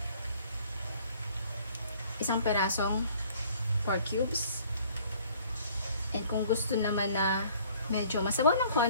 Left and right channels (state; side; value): inverted; both; correlation -0.56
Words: isang perasong pork cubes. And kung gusto naman na medyo masabaw ng